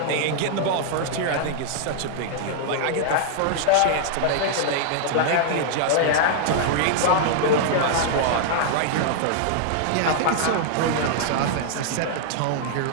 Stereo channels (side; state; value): both; different; correlation -0.01